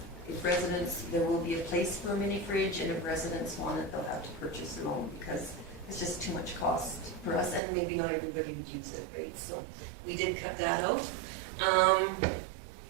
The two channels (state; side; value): drops out; left; at 7.6 s